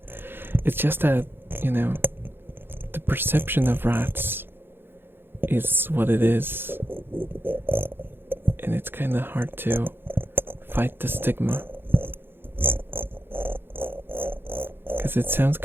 It's just that, the perception of rats is what it is, and it's kind of hard to fight the stigma, because it sounds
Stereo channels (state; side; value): late; left; 0.10 ms